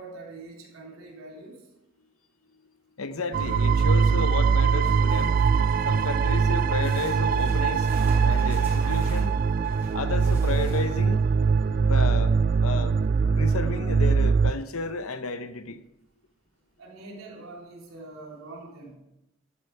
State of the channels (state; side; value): quieter; left; 4.2 dB